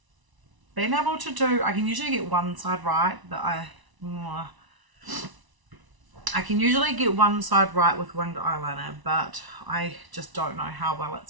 been able to do, I can usually get one side right, but I can usually get one side right with winged eyeliner, but I just don't know how well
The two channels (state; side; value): late; left; 1.0 ms